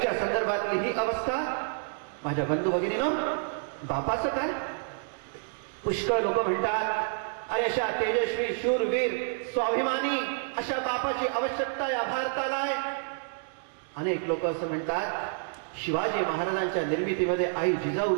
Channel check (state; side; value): silent; left; digital silence